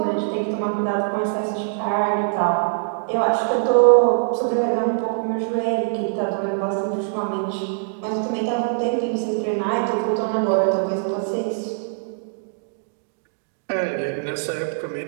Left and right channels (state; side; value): silent; left; digital silence